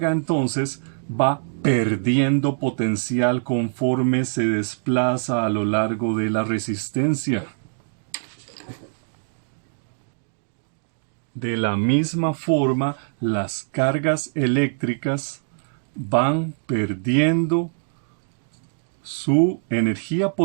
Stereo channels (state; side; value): silent; left; digital silence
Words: entonces va perdiendo potencial conforme se desplaza a lo largo de la resistencia. De la misma forma, las cargas eléctricas van perdiendo su energía